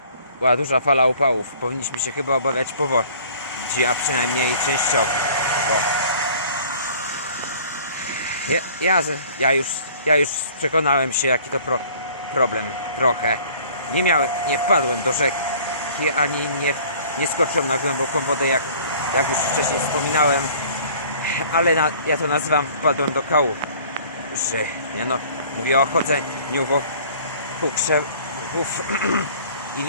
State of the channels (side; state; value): both; inverted; correlation -0.51